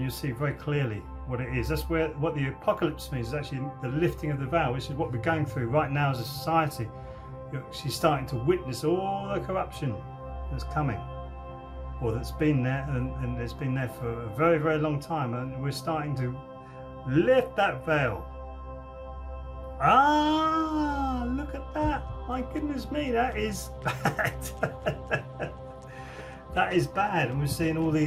you'll see very clearly what it is. That's what the apocalypse means, is actually the lifting of the veil, which is what we're going through right now as a society. You're actually starting to witness all the corruption that's coming, or that's been there, and it's been there for a very, very long time, and we're starting to lift that veil. Ah, look at that. My goodness me, that is bad. That is bad. And we're seeing all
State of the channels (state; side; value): identical; both; correlation 1.00